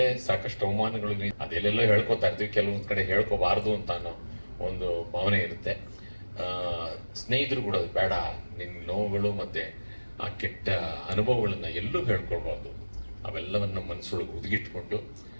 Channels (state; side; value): inverted; both; correlation -1.00